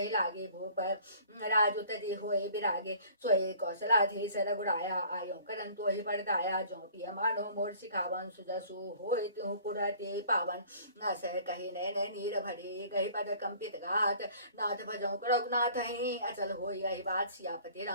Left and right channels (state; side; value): inverted; both; correlation -0.52